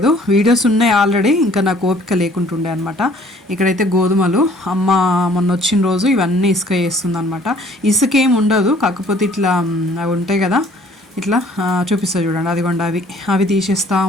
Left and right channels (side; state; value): both; normal; correlation 0.57